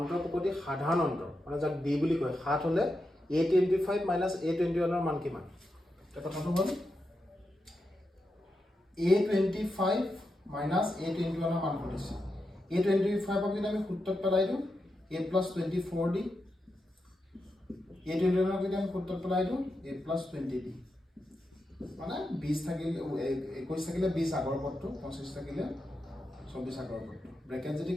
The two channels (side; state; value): both; normal; correlation 0.87